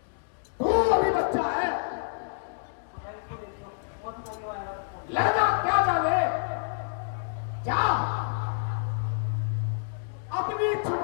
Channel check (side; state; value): right; silent; digital silence